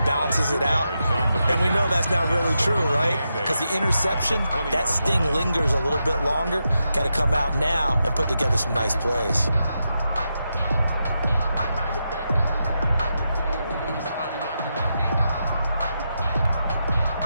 balances it out. And we know that's not really true, right? Because the interception, that sting lingers a little bit longer. Got to come out now and put together some nice plays.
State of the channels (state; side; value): inverted; both; correlation -0.86